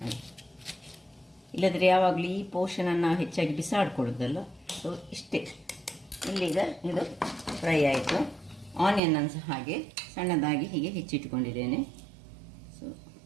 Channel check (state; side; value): drops out; left; at 9.0 s